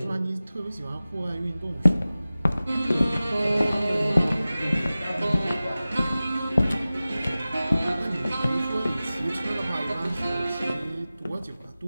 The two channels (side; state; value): both; inverted; correlation -0.96